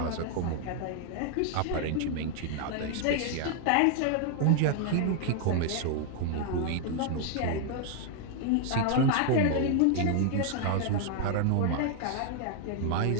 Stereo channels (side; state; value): both; different; correlation 0.00